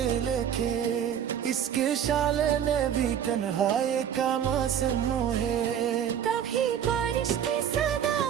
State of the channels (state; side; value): quieter; left; 9.2 dB